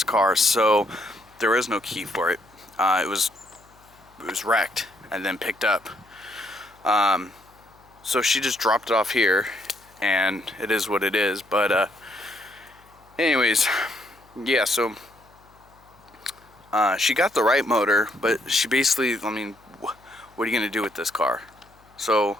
car, so there is no key for it. It was wrecked and then picked up. So she just dropped it off here, and it is what it is. But anyways, yeah, so she got the right motor, but she basically, I mean, what are you gonna do with this car? So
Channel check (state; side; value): noise; left; hum, 29 dB below the sound